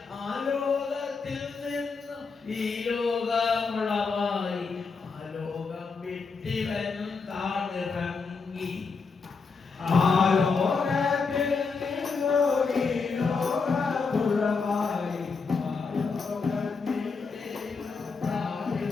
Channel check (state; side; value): quieter; right; 4.8 dB